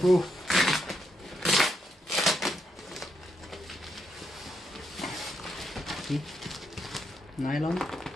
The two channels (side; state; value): both; normal; correlation 0.79